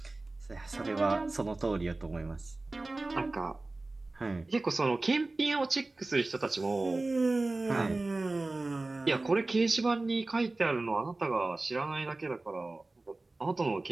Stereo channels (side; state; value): left; quieter; 3.1 dB